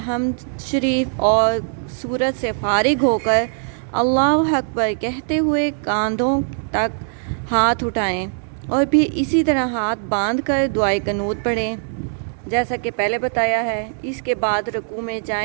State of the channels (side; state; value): left; silent; 65 dB below the other